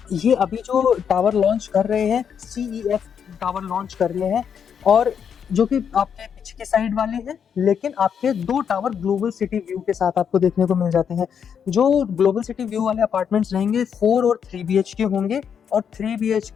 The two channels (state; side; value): quieter; right; 7.6 dB